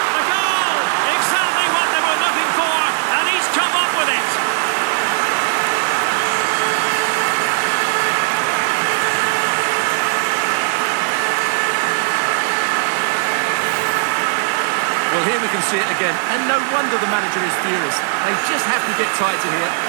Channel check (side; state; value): left; silent; digital silence